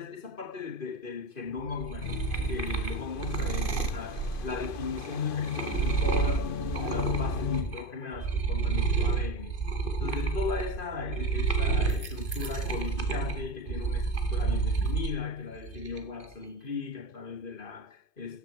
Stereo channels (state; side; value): late; right; 2.5 ms